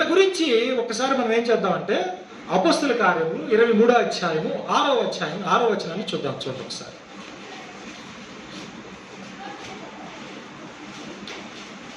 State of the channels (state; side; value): identical; both; correlation 1.00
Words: గురించి ఒకసారి మనం ఏం చేద్దామంటే అపొస్తలుల కార్యములు 23వ అధ్యాయము 6వ అధ్యాయం 6వ వచనాన్ని చూద్దాం. చూడండి ఒకసారి.